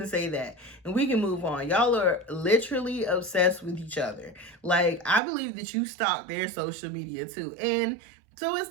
to say that. And we can move on. Y'all are literally obsessed with each other. Like, I believe that you stalk their social media too. And so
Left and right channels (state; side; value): drops out; left; at 5.2 s